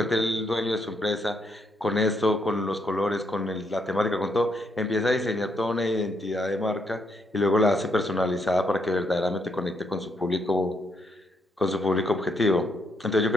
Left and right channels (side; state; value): both; normal; correlation 0.76